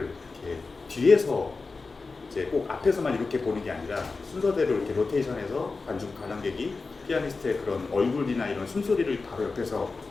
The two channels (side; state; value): right; quieter; 4.0 dB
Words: 이렇게 뒤에서 이제 꼭 앞에서만 이렇게 보는 게 아니라 순서대로 이렇게 로테이션해서 관람객이 피아니스트의 그런 얼굴이나 이런 숨소리를 바로 옆에서